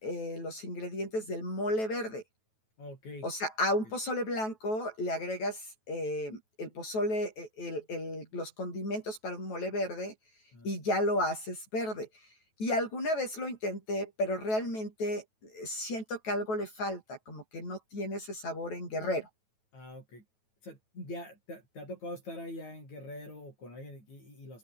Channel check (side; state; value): right; late; 9.2 ms